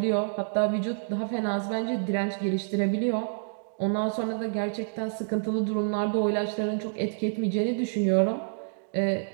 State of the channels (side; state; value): left; silent; digital silence